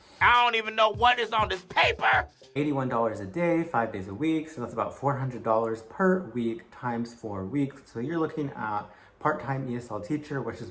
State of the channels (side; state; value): both; identical; correlation 1.00